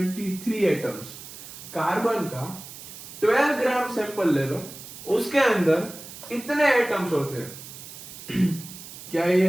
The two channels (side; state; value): right; noise; hiss, 14 dB below the sound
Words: atoms. Carbon का 12 ग्राम सैंपल ले लो, उसके अंदर इतने एटम्स होते हैं क्या